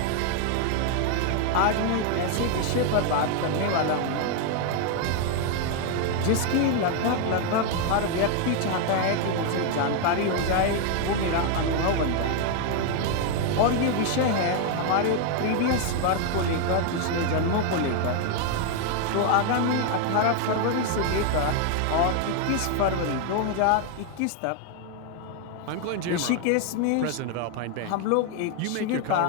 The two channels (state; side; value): different; both; correlation 0.01